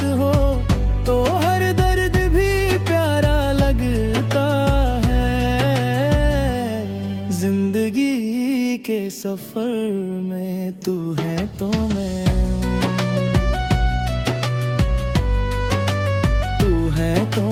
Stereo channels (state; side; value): identical; both; correlation 1.00